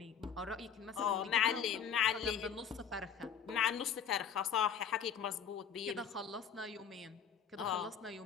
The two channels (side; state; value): right; quieter; 7.7 dB